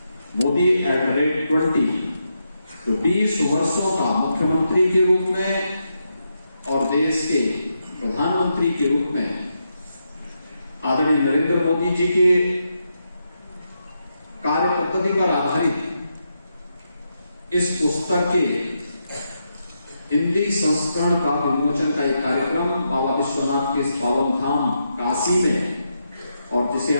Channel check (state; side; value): inverted; both; correlation -0.83